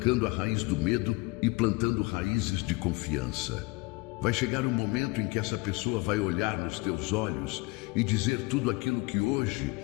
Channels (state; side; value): quieter; right; 25.2 dB